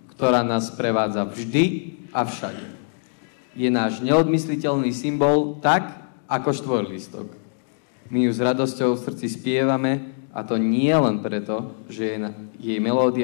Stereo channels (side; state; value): right; silent; digital silence